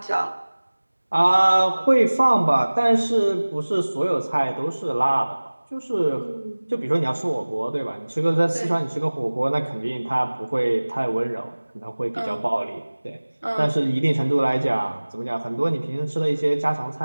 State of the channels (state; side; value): inverted; both; correlation -1.00